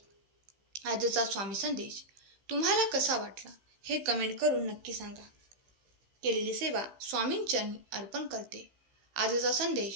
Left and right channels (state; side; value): late; left; 15 ms